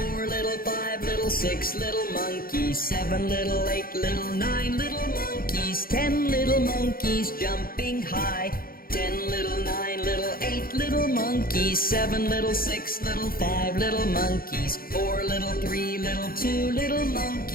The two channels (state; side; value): late; right; 0.42 ms